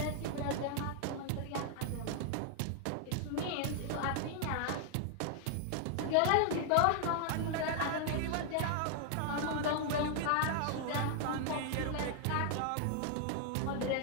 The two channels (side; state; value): both; different; correlation 0.00